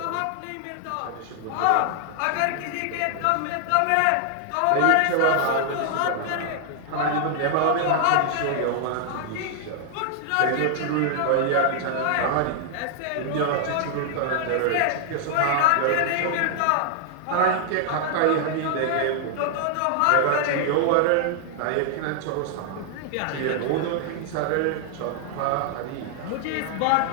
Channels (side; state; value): both; different; correlation 0.00